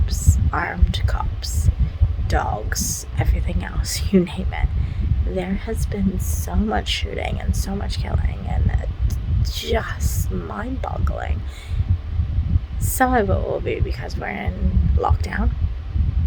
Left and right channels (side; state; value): both; identical; correlation 1.00